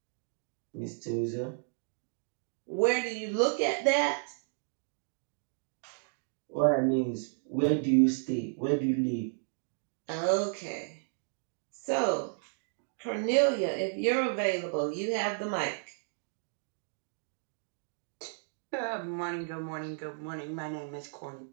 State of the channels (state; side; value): silent; left; digital silence